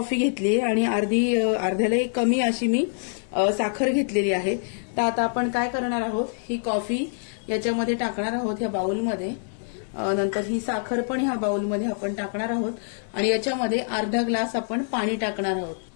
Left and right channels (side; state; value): right; silent; 62 dB below the other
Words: घेतली आणि अर्ध्यालाही कमी अशी मी साखर घेतलेली आहे। तर आता आपण काय करणार आहोत, ही कॉफी याच्यामध्ये टाकणार आहोत ह्या बाउलमध्ये, नंतर ही साखर पण ह्या बाउलमध्ये आपण टाकणार आहोत आणि याच्यामध्ये अर्धा ग्लास आपण पाणी टाकणार आहोत।